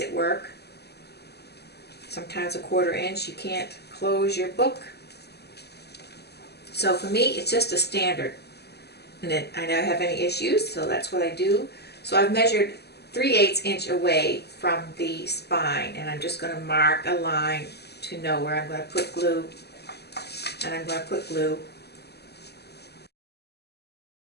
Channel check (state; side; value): late; right; 0.48 ms